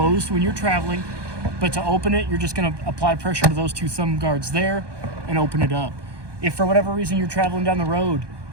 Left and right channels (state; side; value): late; left; 1.2 ms